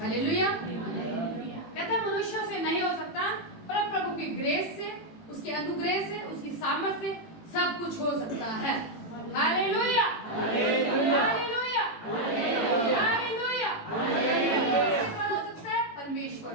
कहते हैं मनुष्यों से नहीं हो सकता, पर प्रभु की ग्रेस से, उसके अनुग्रह से, उसकी सामर्थ से सब कुछ हो सकता है। Hallelujah, hallelujah, hallelujah, hallelujah. हो सकता है परमेश्वर।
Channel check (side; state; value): right; late; 18 ms